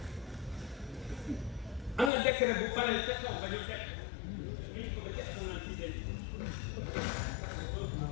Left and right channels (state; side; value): drops out; right; at 2.1 s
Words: am na décret bu paree ca kaw ba ñu teg